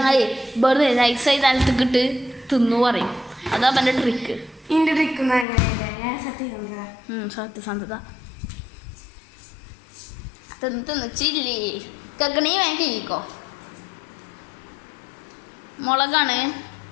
വെറുതെ നൈസായി നിലത്തേക്കിട്ട് തിന്നു പറയും. അതാ എൻ്റെ ട്രിക്ക്. സത്യസന്ധത. തിന്ന് ചില്ലി കക്കണി വേഗം കഴിക്കോ. മുളകാണ്.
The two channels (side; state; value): right; drops out; at 5.5 s